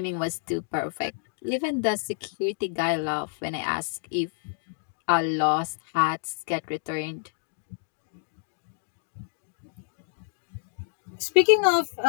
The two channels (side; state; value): right; silent; digital silence